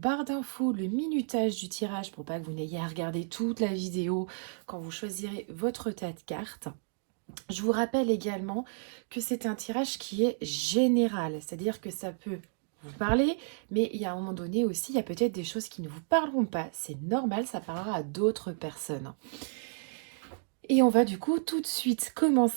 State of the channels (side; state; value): left; silent; digital silence